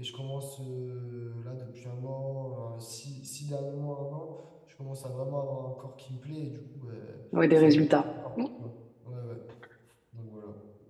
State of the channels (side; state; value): both; identical; correlation 1.00